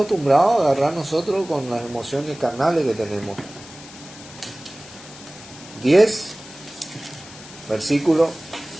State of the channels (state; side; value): noise; left; hiss, 18 dB below the sound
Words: a agarrar nosotros con las emociones carnales que tenemos. 10, versículo